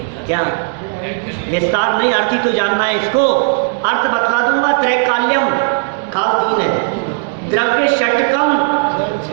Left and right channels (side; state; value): left; silent; 65 dB below the other